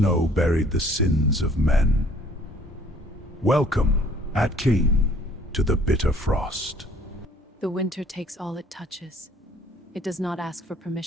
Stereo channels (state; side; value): normal; both; correlation 0.57